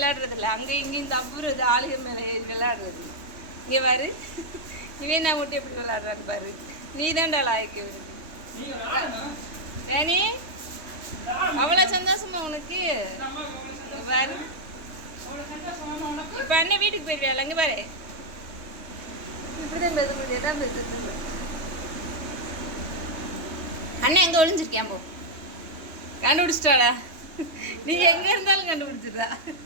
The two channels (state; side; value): late; left; 3.1 ms